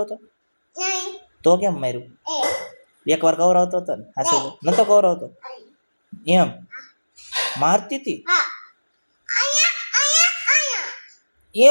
તો? તો કેમ માર્યું? એકવાર કવરાવતો હતો ને? હાસુ નતો કવરાવતો? એમ મારતી હતી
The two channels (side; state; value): both; inverted; correlation -1.00